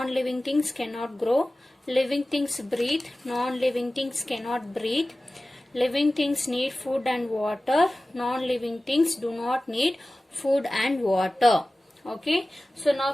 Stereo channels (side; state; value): both; normal; correlation 0.97